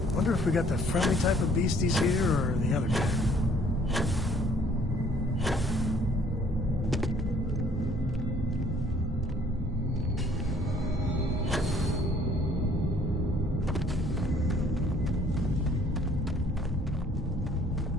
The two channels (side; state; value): both; normal; correlation 0.60